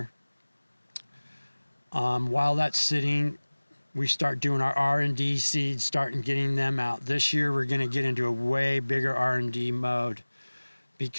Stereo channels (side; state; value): both; inverted; correlation -1.00